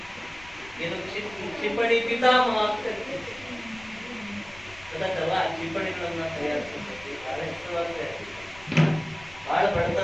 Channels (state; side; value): noise; left; rumble, 22 dB below the sound